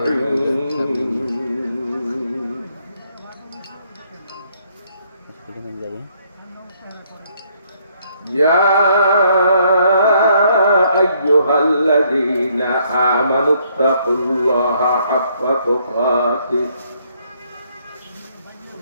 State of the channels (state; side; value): inverted; both; correlation -0.69